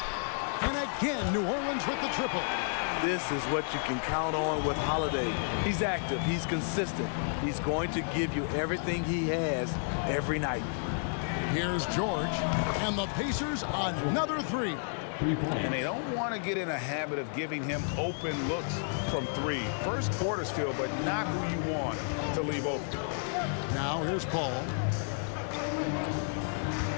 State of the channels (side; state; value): right; silent; digital silence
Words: And again, New Orleans with the triple. This is what you can count on with Holiday. He's active, he's consistent. He's going to give you everything he has every night. Here's George, and the Pacers another 3. And they don't want to get in a habit of giving him open looks from 3. First quarter's feel, but not who you want to leave open. Now here's Paul.